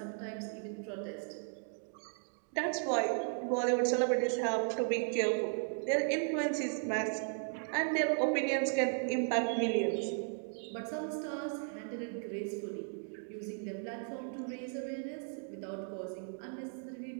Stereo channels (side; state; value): left; silent; 54 dB below the other